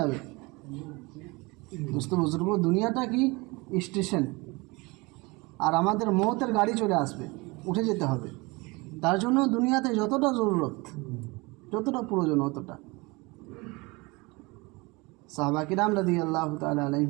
বুঝতে বুজুর্গ, দুনিয়াটা কি স্টেশন, আর আমাদের মৌতের গাড়ি চলে আসবে, উঠে যেতে হবে। তার জন্য দুনিয়াতে যতটা জরুরত, যতটা প্রয়োজন, অতটা। সাহাবা কিরাম রাদিয়াল্লাহু তাআলা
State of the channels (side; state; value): left; quieter; 25.2 dB